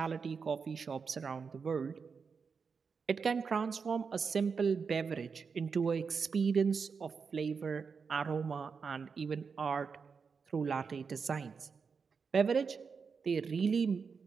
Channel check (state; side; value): quieter; left; 5.5 dB